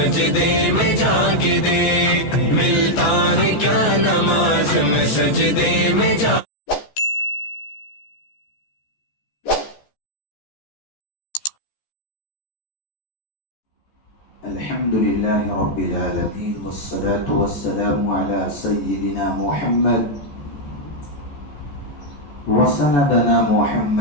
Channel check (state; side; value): late; right; 14 ms